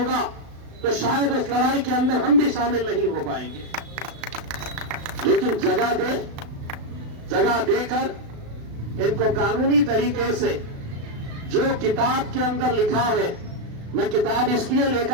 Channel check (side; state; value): left; late; 36 ms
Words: तो शायद उस लड़ाई के अंदर हम भी शामिल नहीं हो पाएंगे। लेकिन जगह देकर इनको कानूनी तरीके से जो किताब के अंदर लिखा है, मैं किताब इसलिए